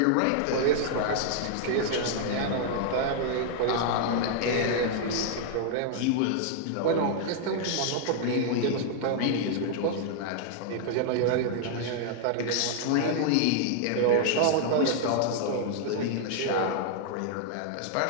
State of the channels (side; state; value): both; different; correlation -0.01